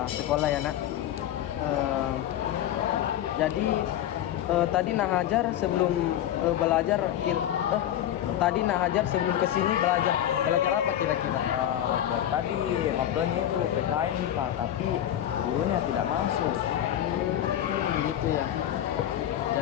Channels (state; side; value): quieter; right; 11.5 dB